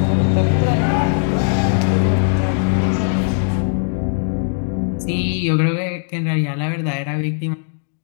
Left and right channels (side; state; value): right; silent; digital silence